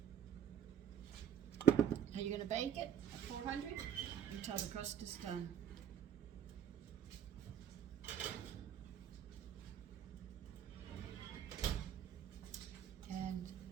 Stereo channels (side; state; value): left; quieter; 9.2 dB